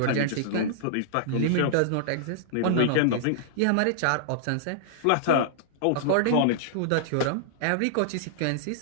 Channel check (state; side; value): different; both; correlation -0.01